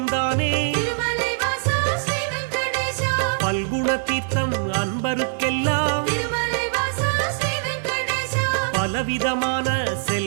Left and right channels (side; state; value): left; silent; 61 dB below the other